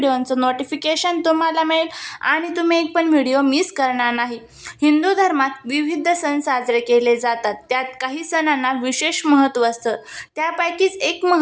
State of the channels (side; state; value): both; identical; correlation 1.00